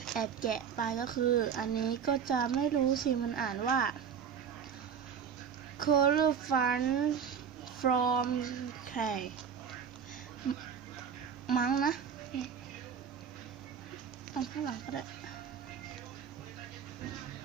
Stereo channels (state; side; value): quieter; left; 7.3 dB